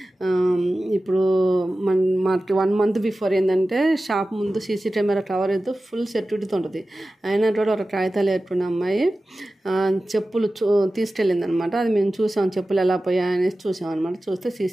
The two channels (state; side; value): normal; both; correlation 0.95